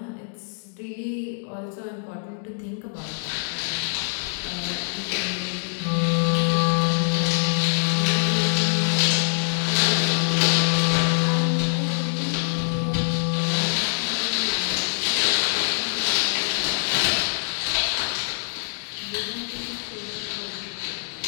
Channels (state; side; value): silent; right; digital silence